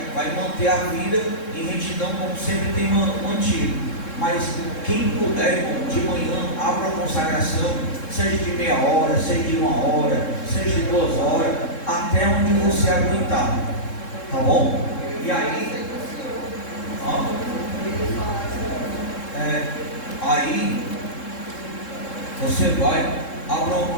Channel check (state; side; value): late; right; 3.7 ms